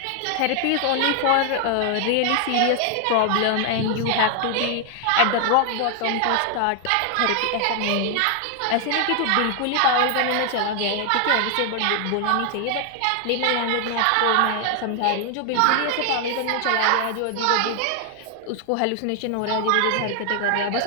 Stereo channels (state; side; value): different; both; correlation 0.00